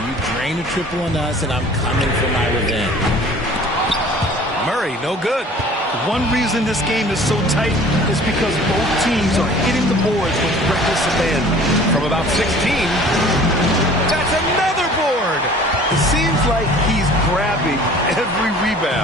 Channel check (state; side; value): normal; both; correlation 0.48